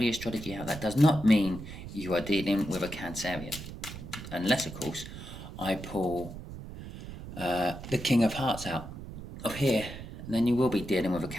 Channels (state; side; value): noise; right; rumble, 11 dB below the sound